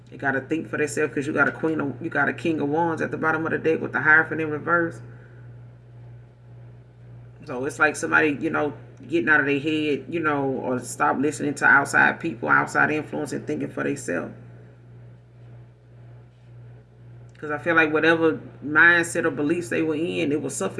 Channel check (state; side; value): identical; both; correlation 1.00